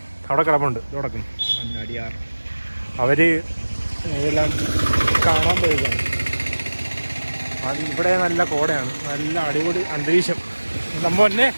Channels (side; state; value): both; inverted; correlation -1.00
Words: അവിടെ കിടപ്പുണ്ട് തുടക്കുന്നു. അടിയാർ അവര് ഇതെല്ലാം കാണാൻ പോയതാണ്. അത് ഇവിടെ നല്ല കോടയാണ്, നല്ല അടിപൊളി അന്തരീക്ഷം. നമ്മ തന്നെ